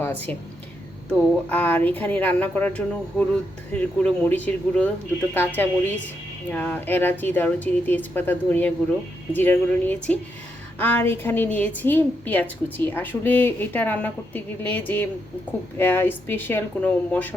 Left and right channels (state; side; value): normal; both; correlation 0.81